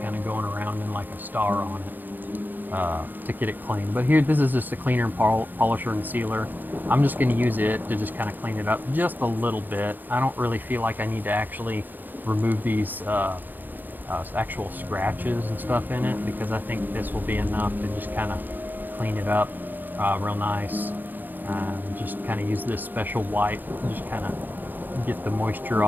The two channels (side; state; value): left; late; 0.088 ms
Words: kind of going around in like a star on it to get it clean. But here, this is just a cleaner and polisher and sealer. I'm just going to use it to just kind of clean it up just a little bit. I don't really feel like I need to actually remove these actual scratches and stuff in it, because I think this will be enough to just kind of clean it up real nice. Just kind of use this special wipe and just kind of get the moisture